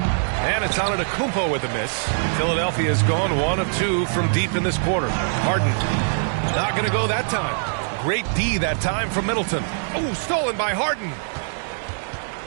it's Antetokounmpo with a miss. Philadelphia has gone 1 of 2 from deep in this quarter. Harden not going to go that time. Great D that time from Middleton. Oh, stolen by Harden.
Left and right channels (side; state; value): left; silent; digital silence